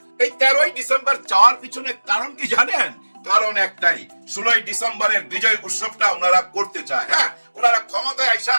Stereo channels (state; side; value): inverted; both; correlation -1.00